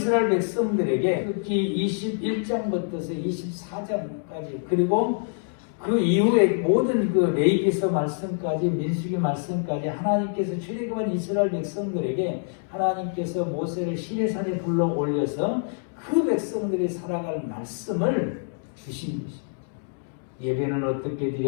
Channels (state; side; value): silent; right; digital silence